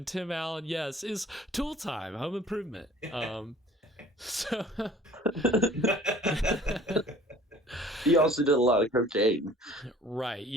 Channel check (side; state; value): both; normal; correlation 0.50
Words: Tim Allen, yes, is Tool Time, Home Improvement. So he also did a lot of cocaine. Right,